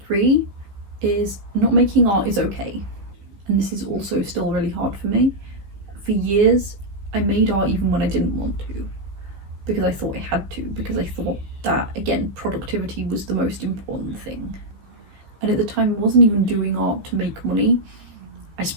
3 is not making art is okay. And this is also still really hard for me. For years, I made art even when I didn't want to, because I thought I had to, because I thought that, again, productivity was the most important thing. And at the time, I wasn't even doing art to make money. I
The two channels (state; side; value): late; left; 15 ms